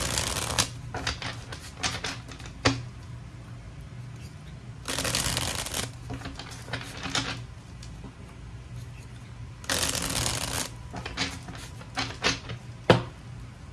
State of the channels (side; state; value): both; identical; correlation 1.00